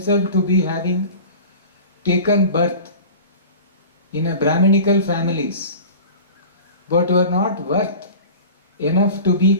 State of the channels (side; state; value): both; inverted; correlation -0.38